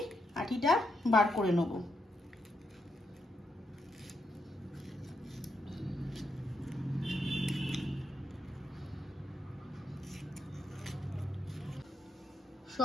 আটিটা বার করে নেব।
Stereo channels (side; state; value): both; normal; correlation 0.81